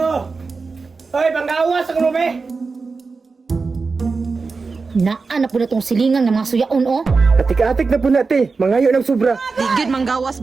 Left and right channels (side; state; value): left; quieter; 4.4 dB